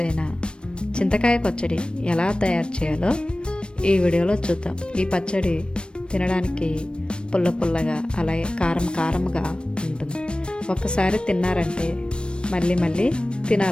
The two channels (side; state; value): right; late; 0.055 ms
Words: అయిన చింతకాయ పచ్చడి ఎలా తయారు చేయాలో ఈ వీడియోలో చూద్దాం. ఈ పచ్చడి తినడానికి పుల్ల పుల్లగా అలాగే కారం కారంగా ఉంటుంది. ఒక్కసారి తిన్నారంటే మళ్ళీ మళ్ళీ